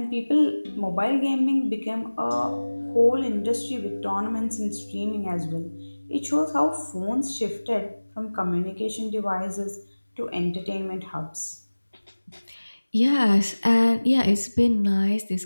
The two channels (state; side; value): inverted; both; correlation -1.00